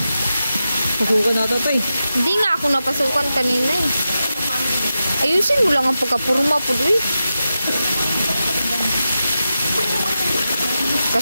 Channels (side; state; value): both; inverted; correlation -0.90